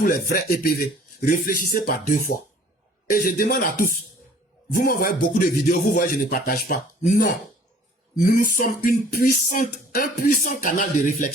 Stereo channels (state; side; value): normal; both; correlation 0.53